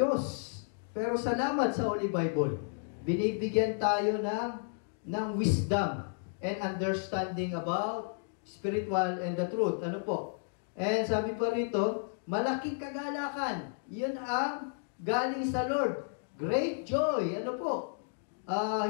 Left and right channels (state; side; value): silent; right; digital silence